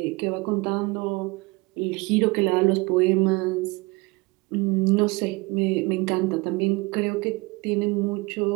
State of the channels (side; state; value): left; quieter; 24.9 dB